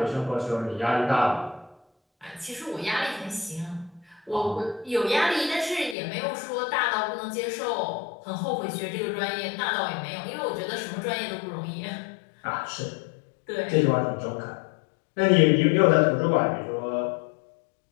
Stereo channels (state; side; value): drops out; right; at 6.0 s